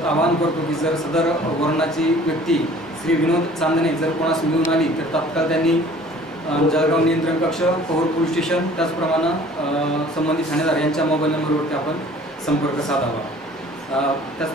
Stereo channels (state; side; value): normal; both; correlation 0.50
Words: आवाहन करतो की जर सदर वर्णाची व्यक्ती श्री विनोद चांदणे जर कोणास मिळून आली तर तात्काळ त्यांनी जळगाव नियंत्रण कक्ष, पोहोर पोलीस स्टेशन, त्याचप्रमाणे संबंधित ठाणेदार यांच्या मोबाईल नंबरवरती आपण संपर्क साधावा.